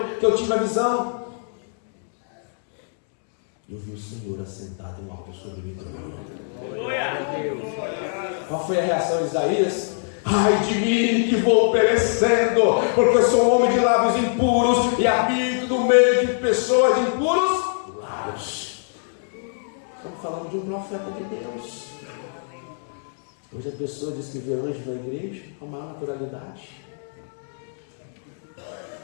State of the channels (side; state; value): right; silent; digital silence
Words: que eu tive a visão. Eu vi o Senhor assentado em alto sobre o trono. Qual foi a reação de Isaías? Ai de mim que vou perecendo, porque eu sou um homem de lábios impuros e habito no meio de pessoas de impuros lábios. Estamos falando de um profeta de Deus. Hoje a pessoa diz que vê anjo na igreja com maior naturalidade.